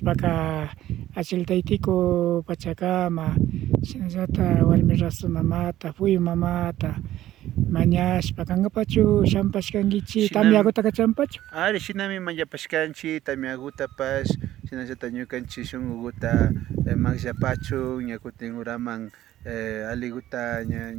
achiltaytiku pachakama shinallata warmi rasu mamata puyu mamata mañashpa kankapachu shampashkankichik tamyakuta champachu. Ari shinami mañapashkanchik tamyakutapash shinallata ñukanchik shunkukuta manllapachun ña kutin uraman aliguta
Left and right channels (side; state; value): left; quieter; 13.7 dB